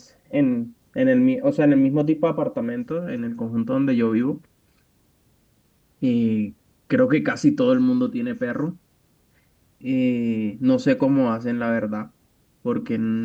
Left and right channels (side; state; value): both; identical; correlation 1.00